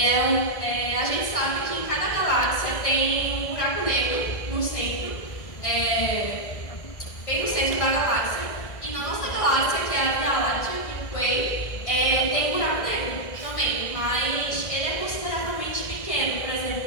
a gente sabe que em cada galáxia tem um buraco negro no centro, bem no centro da galáxia. E na nossa galáxia, que é a Via Láctea, Milky Way, tem um buraco negro também, mas ele é consideravelmente pequeno, por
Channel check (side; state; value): right; late; 1.6 ms